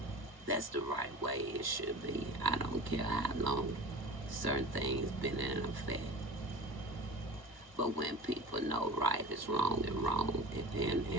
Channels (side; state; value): left; late; 1.1 ms